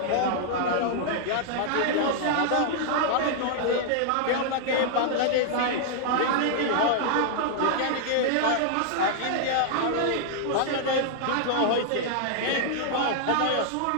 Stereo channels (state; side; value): different; both; correlation -0.01